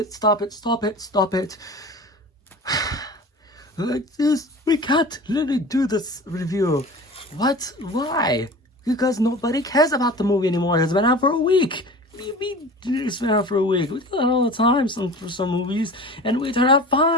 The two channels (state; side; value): normal; both; correlation 0.37